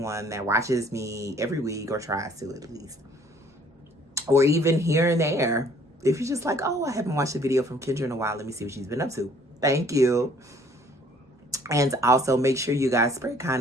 that watches me every week, or tries to at least. Or even here and there. If you're just like, oh, I haven't watched a video from Kendra in a while. Let me see what she's been up to. Thank you. And also make sure you guys spread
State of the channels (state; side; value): normal; both; correlation 0.58